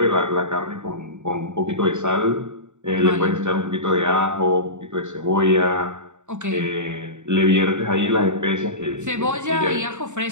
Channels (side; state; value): left; late; 0.84 ms